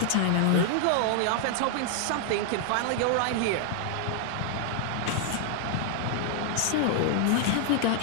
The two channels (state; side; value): different; both; correlation 0.00